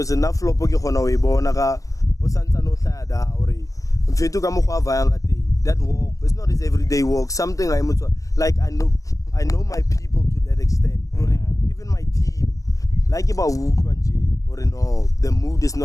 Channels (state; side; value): late; right; 0.16 ms